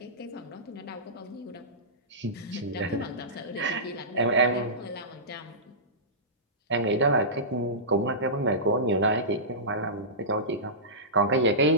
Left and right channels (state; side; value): normal; both; correlation -0.19